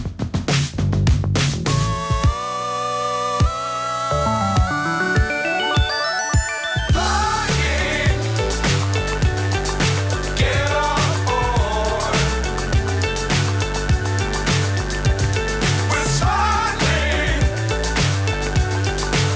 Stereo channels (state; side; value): identical; both; correlation 1.00